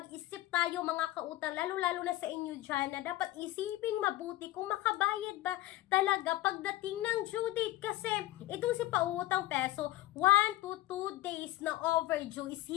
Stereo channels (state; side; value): quieter; right; 16.3 dB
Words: tayo mga kautang, lalo-lalo na sa inyo dyan, na dapat isiping mabuti kung makabayad ba talaga pagdating ng due date. Kasi itong si Pautang Peso, 1 to 2 days na overdue is